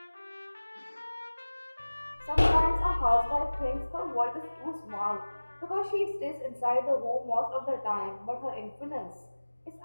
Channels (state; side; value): inverted; both; correlation -1.00